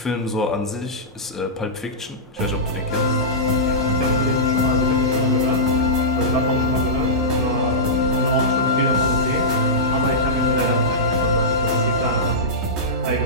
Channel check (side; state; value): both; normal; correlation -0.14